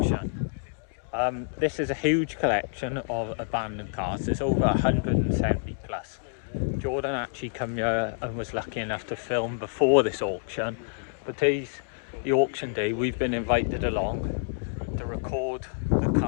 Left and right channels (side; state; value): right; silent; digital silence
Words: This is a huge collection of abandoned cars. There's over 170 plus. Jordan actually come here and was lucky enough to film before this auction, but today's the auction day. We've been invited along to record the